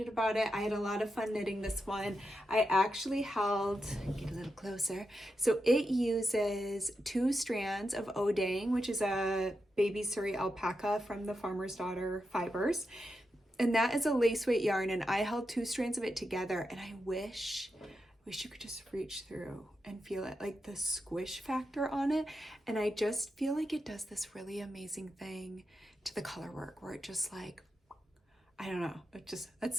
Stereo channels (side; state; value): both; normal; correlation 0.87